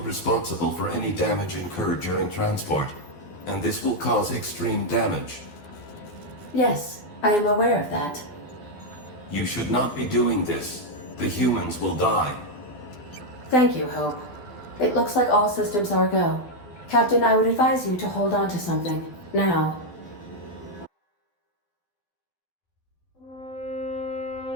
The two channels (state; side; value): late; right; 12 ms